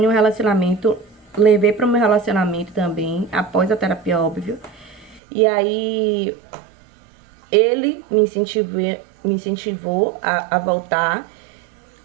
um relacionamento, levei para o meu relacionamento também, após a terapia, óbvio. E aí, ele me incentivou a voltar.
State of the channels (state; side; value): drops out; left; at 5.2 s